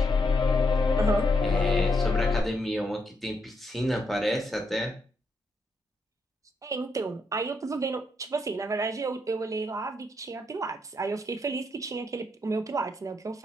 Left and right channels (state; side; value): normal; both; correlation 0.78